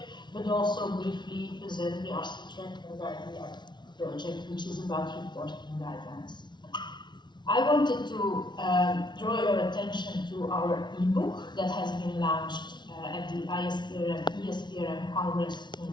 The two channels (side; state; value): right; late; 0.21 ms